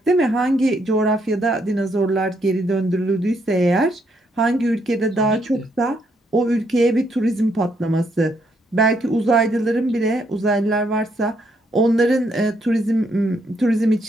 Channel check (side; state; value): both; normal; correlation 0.74